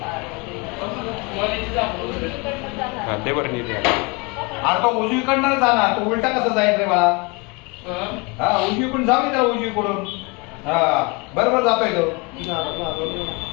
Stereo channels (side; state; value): right; quieter; 28.7 dB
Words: हा ते बरं नाही द्या. अरे तो उजवीकडनं जाणार तो उलटा कसं जाईल रे बाळा. हा उजवीकडून जाऊ दे त्याला उजवीकडून. हा बरोबर जातोय तो.